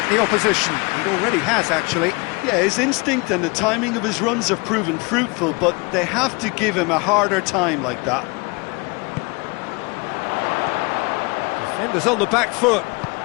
the opposition. It already has, actually. Yeah, his instinct and the timing of his runs have proven fruitful, but they have to give him a harder time like that. Defenders on the back foot.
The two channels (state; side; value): quieter; right; 28.0 dB